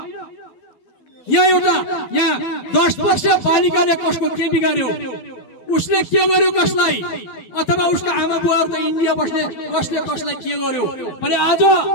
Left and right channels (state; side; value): late; right; 12 ms